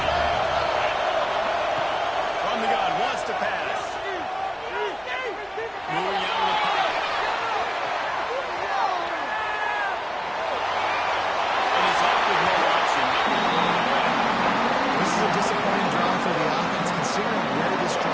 From the gun, wants to pass. Moving out of the pocket. And he's off with no option. This is a disappointing drive for the offense, considering where this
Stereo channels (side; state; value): both; identical; correlation 1.00